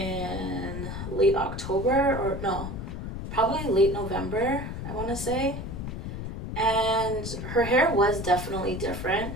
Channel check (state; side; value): noise; left; rumble, 6 dB below the sound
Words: late October, or no, probably late November, I want to say. And her hair was definitely different.